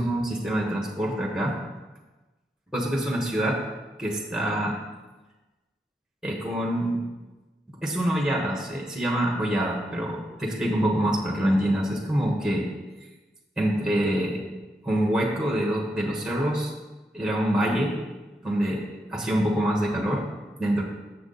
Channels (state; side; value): normal; both; correlation 0.83